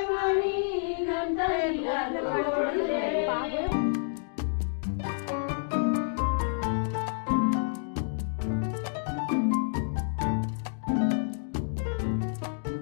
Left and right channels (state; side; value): silent; right; digital silence